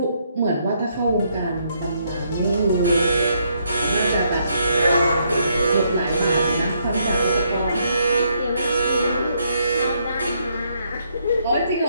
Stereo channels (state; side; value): inverted; both; correlation -0.74